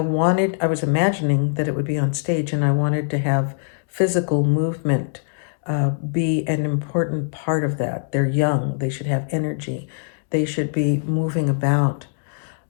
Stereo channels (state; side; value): silent; right; digital silence